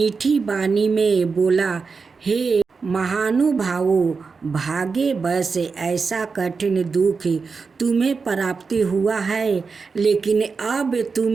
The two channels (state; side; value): quieter; left; 4.9 dB